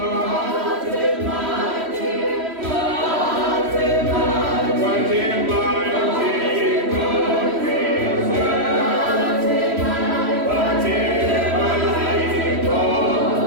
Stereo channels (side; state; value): left; late; 3.1 ms